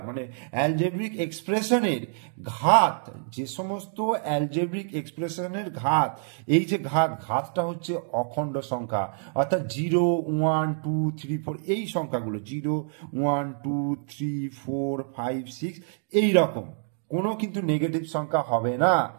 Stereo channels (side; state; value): left; silent; digital silence